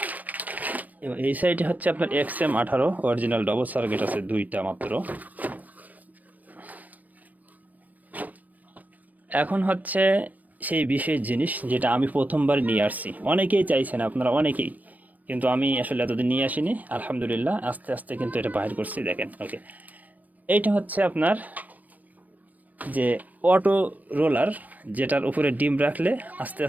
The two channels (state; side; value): late; left; 0.079 ms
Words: এবং এই সাইডে হচ্ছে আপনার XM18 অরিজিনাল ডবল সার্কিট আছে 2টা মাত্র। এখন হচ্ছে সেই বিশেষ জিনিস যেটা আমি প্রথমবার নিয়ে আসছি, অনেকেই চাইছেন আপনারা অনেকেই, কিন্তু আমি আসলে এতদিন নিয়ে আসিনি। আলহামদুলিল্লাহ আস্তে আস্তে কিন্তু এটা বাহির করছি, দেখেন। ওকে, এইটা হচ্ছে আপনার যে অটো রোলার, যেটার উপরে ডিম রাখলে আস্তে